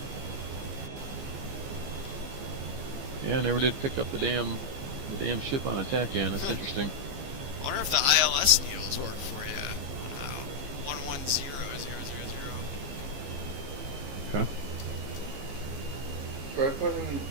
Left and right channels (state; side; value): late; left; 15 ms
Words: Yeah, I never did pick up the damn ship on attack end. That's interesting. I wonder if the ILS needles work for you. 110 Okay.